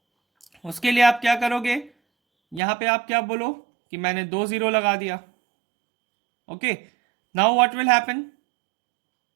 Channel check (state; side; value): drops out; left; at 2.6 s